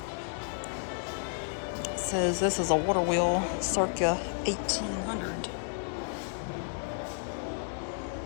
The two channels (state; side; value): silent; right; digital silence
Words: It says this is a water wheel circa 1800.